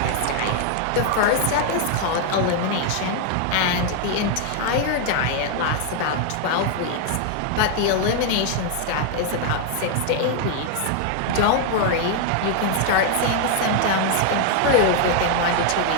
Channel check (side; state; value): both; different; correlation 0.00